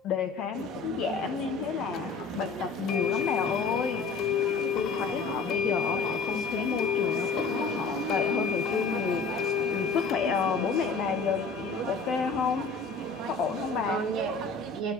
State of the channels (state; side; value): quieter; right; 4.6 dB